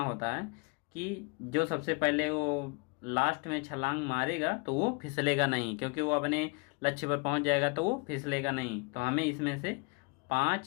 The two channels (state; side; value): quieter; right; 32.0 dB